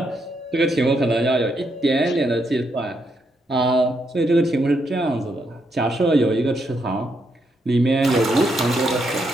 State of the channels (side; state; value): both; normal; correlation 0.78